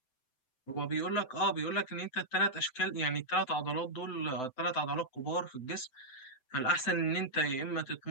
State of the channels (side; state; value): right; late; 7.8 ms